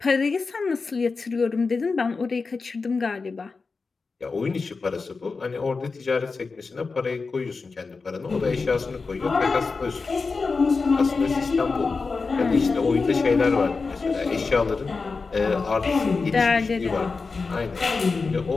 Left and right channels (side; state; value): right; quieter; 4.4 dB